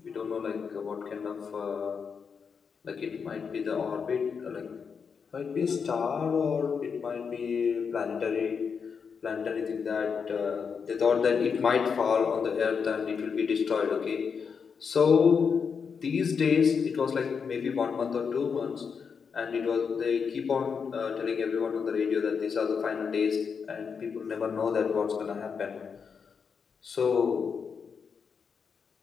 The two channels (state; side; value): quieter; right; 6.1 dB